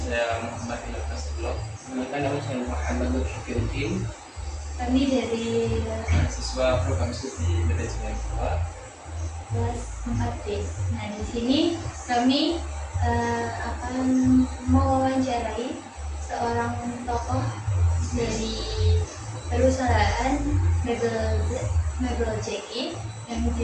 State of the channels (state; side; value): identical; both; correlation 1.00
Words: Muhammad Ilham Nasrullah. Kenalkan, nama saya Muhammad Syafiuddin. Kami dari Mahasiswa program studi manajemen kedua kelas 4B. Nah, di sini kami akan mewawancarai seorang tokoh dari perusahaan mebel JI yang